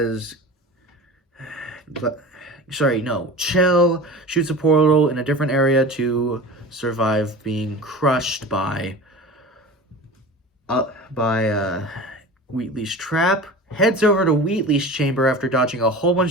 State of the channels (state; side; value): normal; both; correlation 0.35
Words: Chell shoots a portal in a different area to survive being crushed by Wheatley's trap. Heads over to Wheatley's chamber after dodging a whole